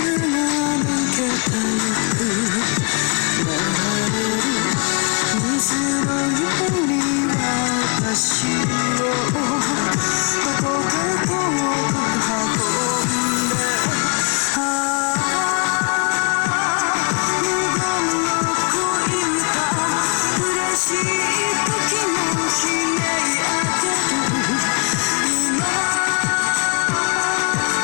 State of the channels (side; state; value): right; quieter; 33.5 dB